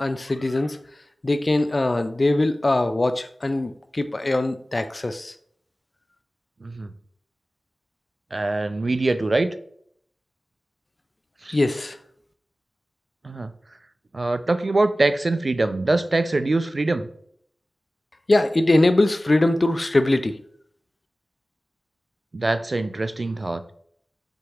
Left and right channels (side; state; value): both; normal; correlation 0.96